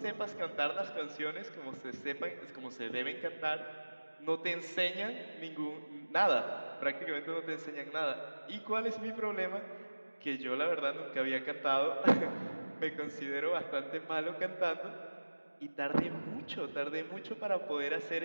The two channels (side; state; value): both; inverted; correlation -1.00